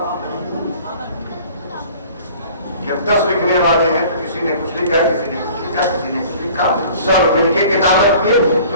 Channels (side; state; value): both; inverted; correlation -0.48